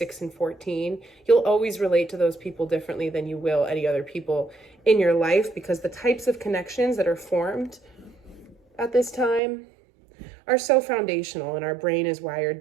and 14, you'll always relate to those people differently than you will any other people in your life, because the types of connections that are formed at this time are so foundational, and our brain is wired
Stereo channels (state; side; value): drops out; left; at 9.4 s